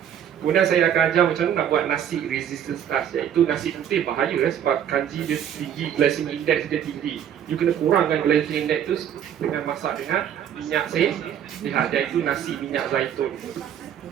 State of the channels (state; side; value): quieter; left; 9.5 dB